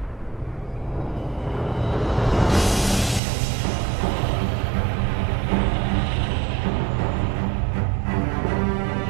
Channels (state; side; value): drops out; left; at 3.2 s